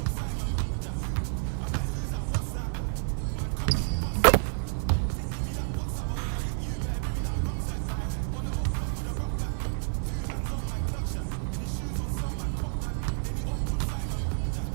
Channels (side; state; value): left; silent; 58 dB below the other